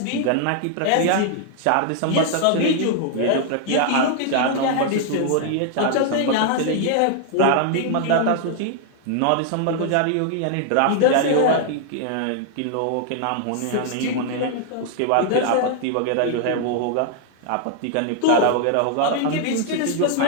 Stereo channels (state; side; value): different; both; correlation 0.00